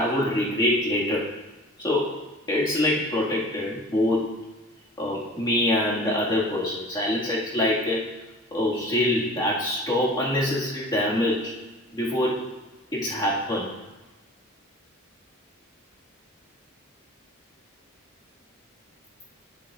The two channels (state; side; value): normal; both; correlation 0.42